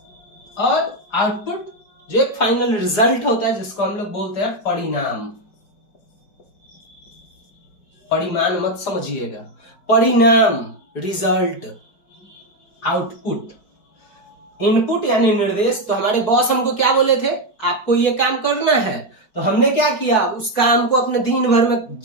और आउटपुट जो एक फाइनल रिजल्ट होता है, जिसको हम लोग बोलते हैं परिणाम। परिमाण मत समझिएगा, परिणाम, रिजल्ट, आउटपुट। इनपुट यानी निर्देश। तो हमारे बॉस हमको क्या बोले थे, आपको ये काम करना है। तो हमने क्या किया, उस काम को अपने दिन भर में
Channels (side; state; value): right; late; 4.7 ms